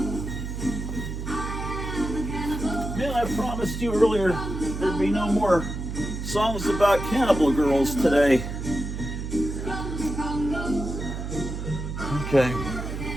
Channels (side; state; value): right; noise; hum, 5 dB below the sound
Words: promised you earlier there'd be no more songs about cannibal girls today. Okay.